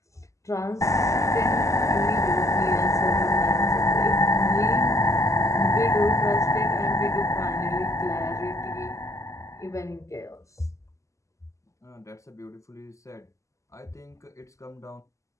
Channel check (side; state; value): right; late; 0.15 ms